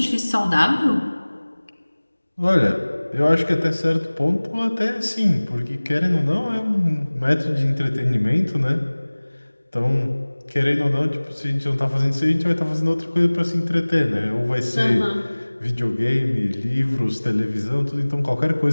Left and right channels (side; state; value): both; inverted; correlation -1.00